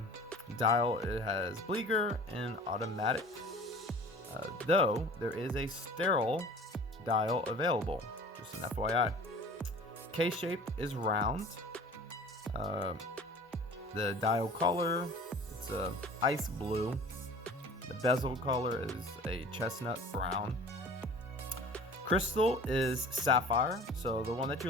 dial it has Bliger and automatic, though there is a sterile dial available, just an FYI. Case shape is round. The dial color, it's a ice blue. The bezel color is a chestnut brown. Crystal is sapphire. So the one that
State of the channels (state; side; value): normal; both; correlation 0.43